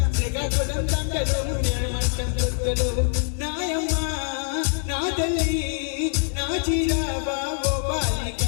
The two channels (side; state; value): right; silent; digital silence